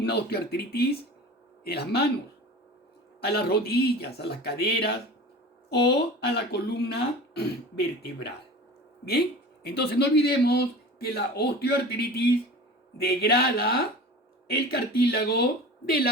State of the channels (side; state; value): both; normal; correlation 0.37